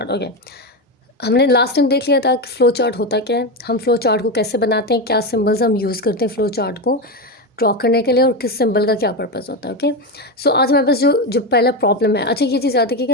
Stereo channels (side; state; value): both; normal; correlation 0.14